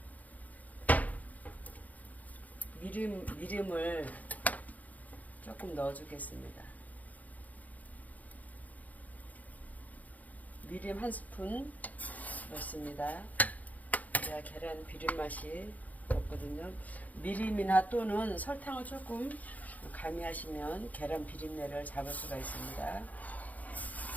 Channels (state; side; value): late; right; 0.077 ms